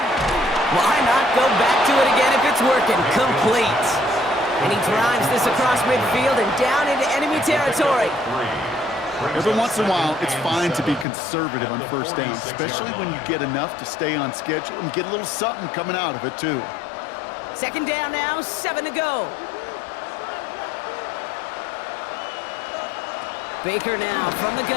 Why not go back to it again if it's working? Complete. And he drives this across midfield and down into enemy territory. Every once in a while, it's fine to be conservative on 1st down, especially when you get enough to stay on schedule and get a little something coming out of it, too. 2nd down now, 7 to go. Baker now from the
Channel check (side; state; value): right; drops out; at 11.1 s